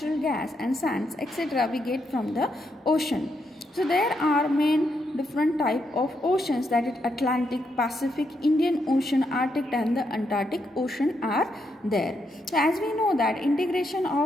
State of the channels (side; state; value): both; normal; correlation 0.80